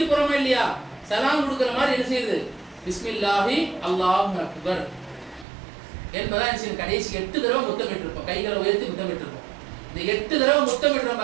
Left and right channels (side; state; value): left; drops out; at 5.5 s